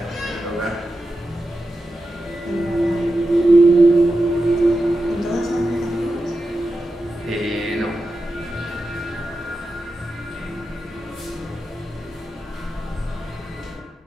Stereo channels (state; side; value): normal; both; correlation 0.91